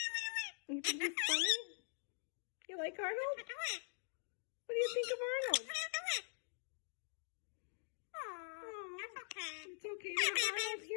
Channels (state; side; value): silent; right; digital silence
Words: You think he's funny? You like Arnold? What do you think of Arnold? It's okay to have Arnold